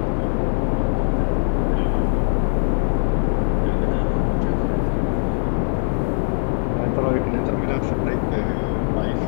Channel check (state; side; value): silent; right; digital silence